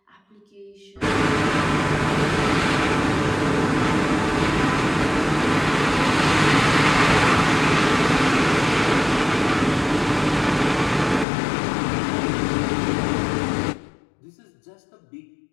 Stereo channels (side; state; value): right; drops out; at 11.2 s